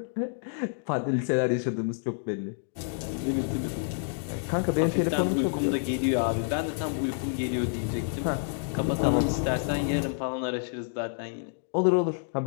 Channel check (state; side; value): silent; right; digital silence